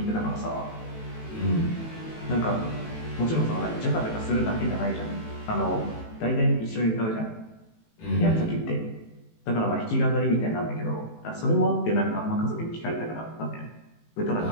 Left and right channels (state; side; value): late; right; 18 ms